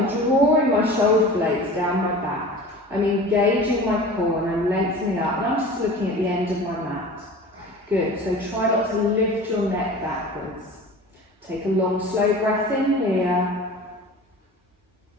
drawing my shoulder blades down my back. I'm engaging my core and I'm lengthening up. And I'm just looking at the end of my mat. Good, so try not to lift your neck backwards. Take a long, slow breath in here.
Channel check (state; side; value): normal; both; correlation 0.38